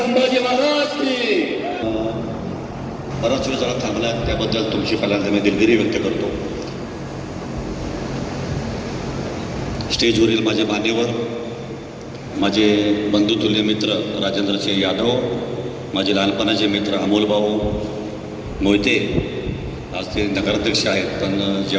महाराज की. बराच वेळ जरा थांबला त्याबद्दल तुमची पहिल्यांदा मी दिलगिरी व्यक्त करतो. स्टेजवरील माझे मान्यवर, माझे बंधुतुल्य मित्र राजेंद्रसिंह यादव, माझे लहानपणाचे मित्र अमोलभाऊ मोहिते, आज ते नगराध्यक्ष आहेत पण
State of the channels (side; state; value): both; identical; correlation 1.00